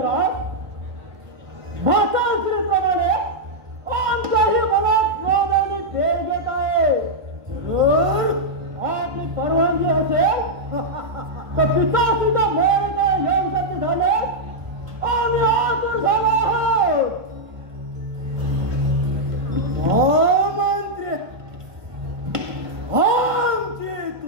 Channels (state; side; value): late; left; 1.5 ms